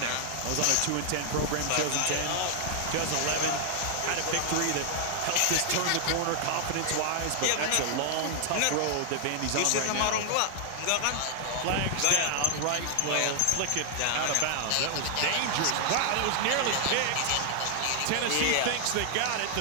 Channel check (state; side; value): different; both; correlation 0.00